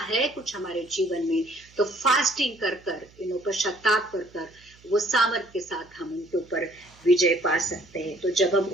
है कुछ हमारे जीवन में, तो फास्टिंग कर कर पश्चाताप कर कर वो सामर्थ के साथ हम उनके ऊपर विजय पा सकते हैं। तो जब हम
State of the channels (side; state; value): right; noise; hum, 27 dB below the sound